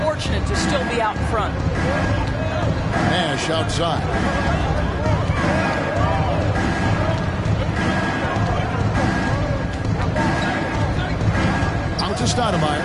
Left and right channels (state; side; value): identical; both; correlation 1.00